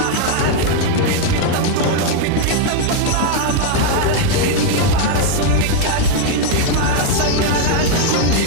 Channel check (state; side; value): different; both; correlation 0.01